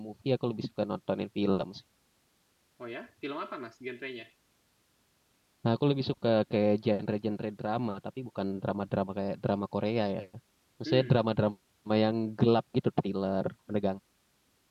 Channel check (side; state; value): both; identical; correlation 1.00